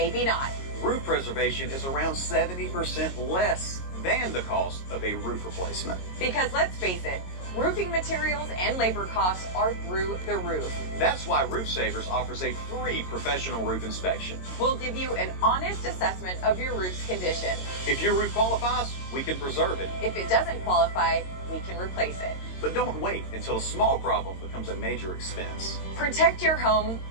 not. Roof preservation is around 70% less than the cost of a roof replacement. Because let's face it, roofing materials and labor costs are through the roof. That's why Roof Savers offers a free professional roof inspection. We'll give you an honest assessment of your roof's condition. If your roof qualifies, we can preserve it. If it doesn't qualify, we can replace it. But don't wait until a small problem becomes a major expense. Protect your home,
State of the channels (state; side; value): late; right; 22 ms